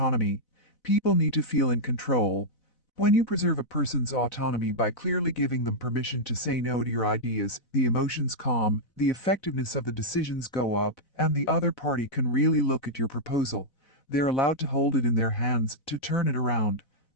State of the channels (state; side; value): late; right; 4.0 ms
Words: People need to feel in control. When you preserve a person's autonomy by clearly giving them permission to say no to your ideas, the emotions calm, the effectiveness of the decisions go up, and the other party can really look at your proposal. They're allowed to hold it in their hands, to turn it around.